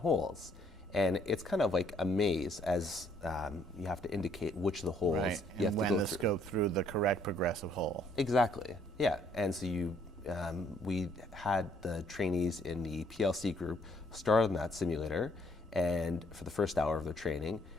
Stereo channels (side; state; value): both; normal; correlation 0.66